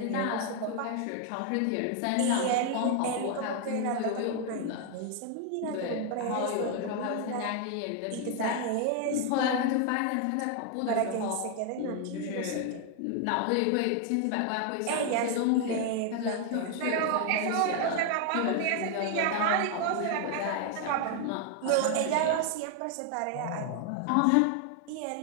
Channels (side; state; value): both; different; correlation 0.00